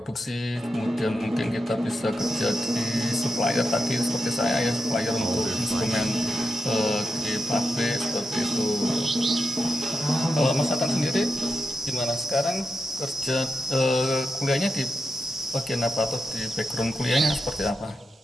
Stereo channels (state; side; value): normal; both; correlation 0.88